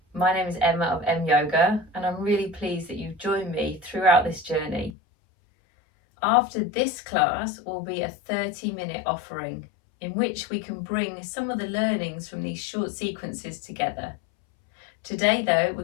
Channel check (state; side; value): drops out; right; at 5.0 s